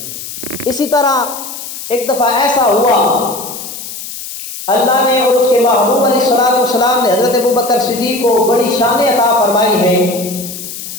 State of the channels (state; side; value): noise; left; hiss, 10 dB below the sound